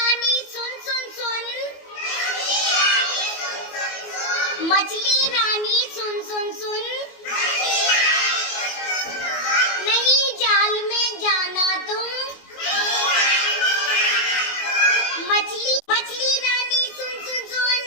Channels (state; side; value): late; right; 21 ms